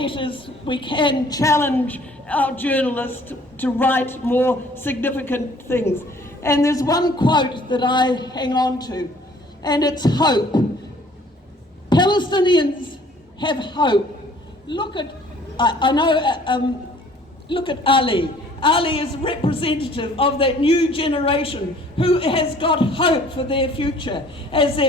we can challenge our journalists to write more significant things. And there's one quote that I hang on to, and it's hope. Palestinians have hope. Look at Ali. Ali is a representative of that new generation who has got hope for their future, as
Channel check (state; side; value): normal; both; correlation 0.55